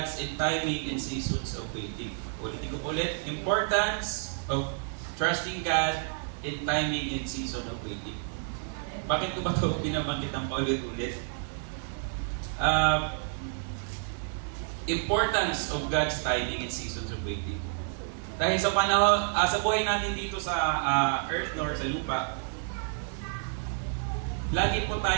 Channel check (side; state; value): left; silent; 58 dB below the other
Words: timing and seasons of waiting. Ulitin ko po ulit, importance of trusting God in timing and season of waiting. Bakit ko ba ito binabanggit ng paulit-ulit? Importance of God's timing and seasons of waiting. Dahil sa panahon, sa buhay natin dito sa earth nor sa lupa, lagi po